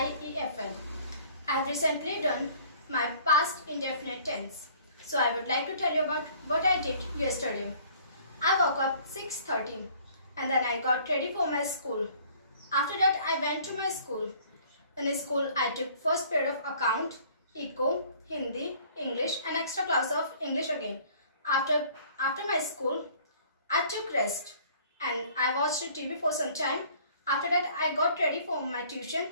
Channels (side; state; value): both; inverted; correlation -0.54